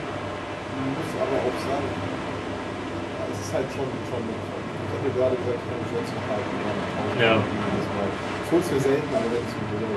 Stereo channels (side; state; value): both; identical; correlation 1.00